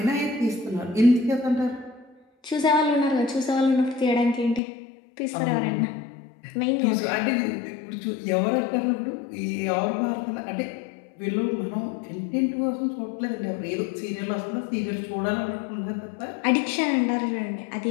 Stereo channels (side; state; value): right; drops out; at 4.6 s